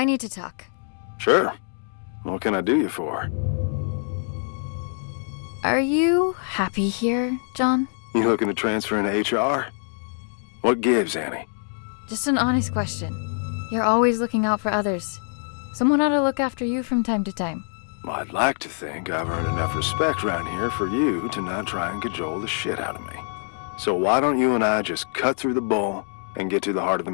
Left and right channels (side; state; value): right; silent; 62 dB below the other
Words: need to talk. Sure. What can I do you for? Are you happy here, John? You looking to transfer into HR? What gives, Annie? Just an honest question. You're always looking out for others. Someone ought to look after you from time to time. Well, I'd like to think I've earned enough respect around here for you to not try and cajole the shit out of me. So why don't you and I just cut through the bull and get to the heart of the